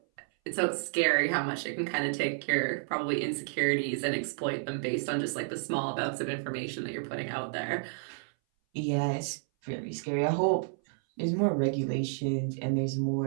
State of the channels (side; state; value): left; silent; 57 dB below the other